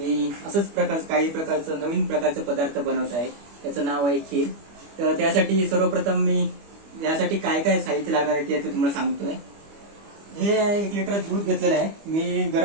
काही प्रकारचं नवीन प्रकारचं पदार्थ बनवत आहे. त्याचं नाव आहे खीर. तर त्यासाठी सर्वप्रथम मी यासाठी काय काय साहित्य लागणार आहे ते तुम्हाला सांगतोय. हे 1 लिटर दूध घेतलेलं आहे. मी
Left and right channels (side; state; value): left; late; 25 ms